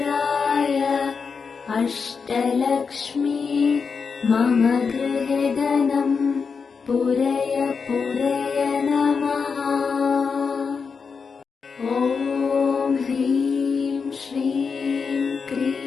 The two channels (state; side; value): quieter; right; 5.5 dB